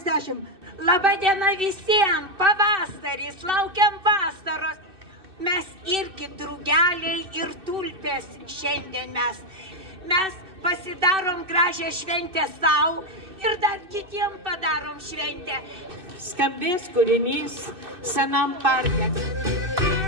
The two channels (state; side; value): late; left; 2.6 ms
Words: Labą dieną visiems, pavasaris, laukiam vasaros. Mes irgi drugeliai ir tulpės šiandien mes pasidarom gražią šventę savo ir dar kitiem padarom šventę. Skambės kūrinys Senam parke.